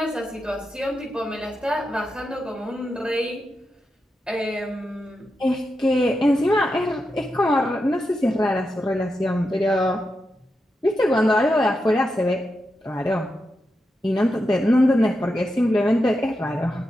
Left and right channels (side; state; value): both; normal; correlation 0.88